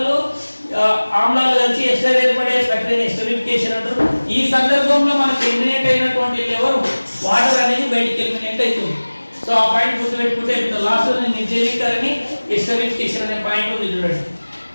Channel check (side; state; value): both; inverted; correlation -1.00